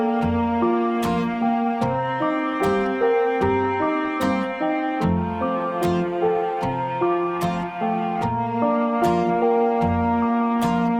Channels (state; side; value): identical; both; correlation 1.00